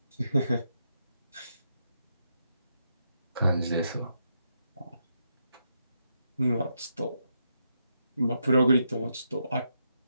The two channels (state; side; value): inverted; both; correlation -0.82